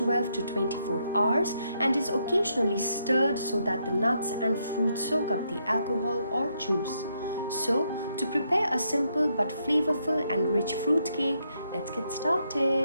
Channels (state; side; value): inverted; both; correlation -0.77